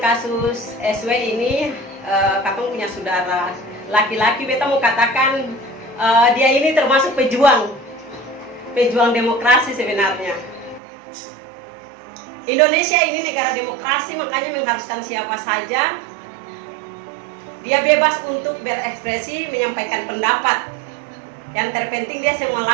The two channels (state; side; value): drops out; left; at 10.8 s